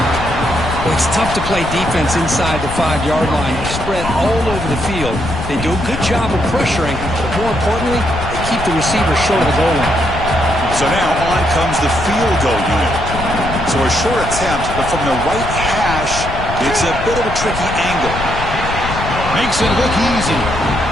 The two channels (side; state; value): left; noise; rumble, 7 dB below the sound